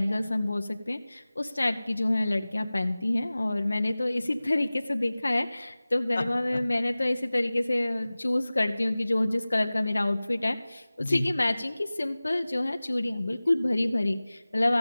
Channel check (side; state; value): both; inverted; correlation -0.98